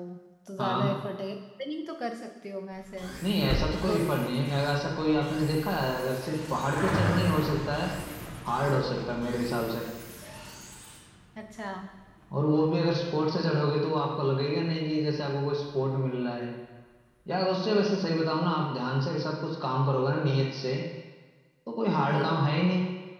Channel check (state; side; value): identical; both; correlation 1.00